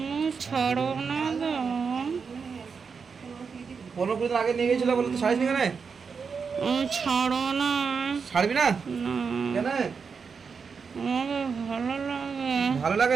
ছাড়ব না তো। 15 দিন আগে নিয়ে গেছিল বলে তুই ছাড়িস নি কেন? আমি ছাড়ব না। ছাড়বি না? না, কেন? আমাকে ভালো লাগে। ভালো লাগে?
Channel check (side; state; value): left; quieter; 5.7 dB